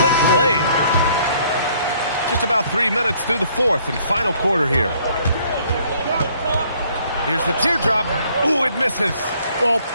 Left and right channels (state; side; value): inverted; both; correlation -0.62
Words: slick play. Just about 3 minutes through the fourth and final quarter here. Here's the teardrop. Ooh, it misses. Well,